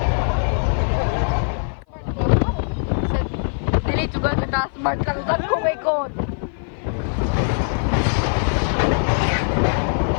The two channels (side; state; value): right; silent; 56 dB below the other